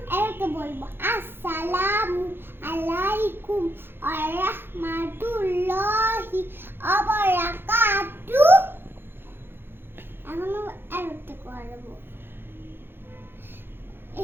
এটাকে বলবো আসসালামু আলাইকুম ওয়া রাহমাতুল্লাহি ওয়া বারাকাতুহু। এখন এটাকে করব।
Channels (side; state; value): left; late; 0.10 ms